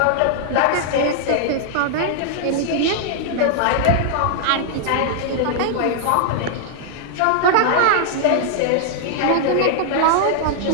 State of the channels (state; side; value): different; both; correlation -0.01